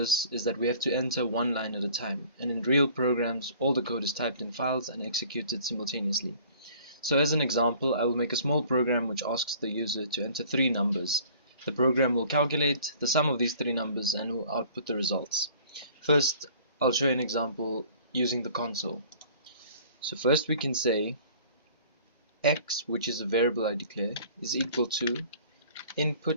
is that we have to enter one line at a time, and in real programs all the code is typed in files and executed simultaneously. So as an example, I will make a small program which asks the user to enter three numbers. The program will calculate the sum of these three numbers and will output the results. First I'll show you an example using the console. So first we can say x, which is a variable I declare, is equal to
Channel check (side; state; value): both; inverted; correlation -0.51